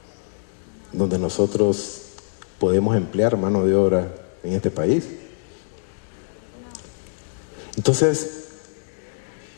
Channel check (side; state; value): right; silent; 63 dB below the other